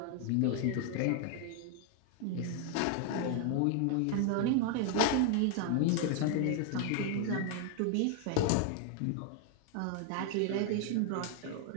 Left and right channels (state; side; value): different; both; correlation 0.00